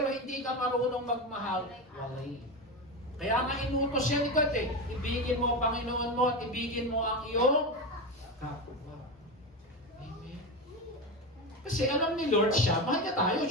hindi ka marunong magmahal, walay. Kaya nga inutos siya ni God eh, ibigin mo ang Panginoon mo at ibigin mo ang iyong kapwa. Amen. Kasi alam ni Lord siya, mahal niya tayo,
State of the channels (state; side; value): normal; both; correlation 0.18